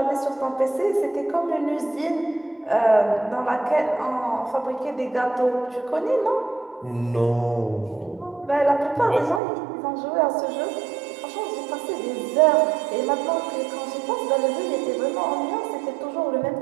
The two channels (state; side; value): drops out; left; at 9.4 s